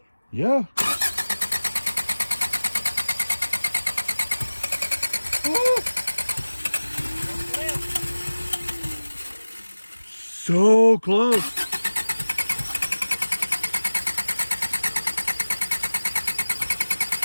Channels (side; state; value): both; inverted; correlation -1.00